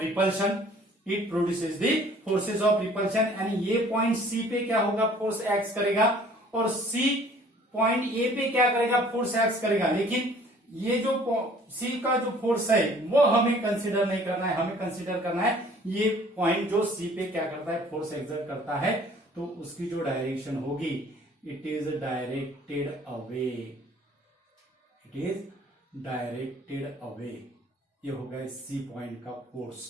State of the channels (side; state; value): both; normal; correlation 0.54